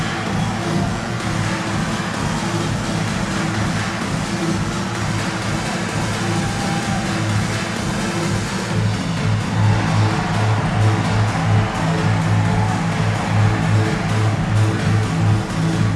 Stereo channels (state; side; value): identical; both; correlation 1.00